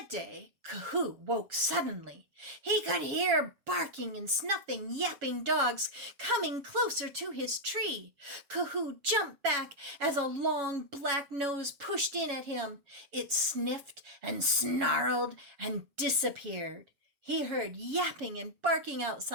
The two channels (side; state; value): left; late; 7.4 ms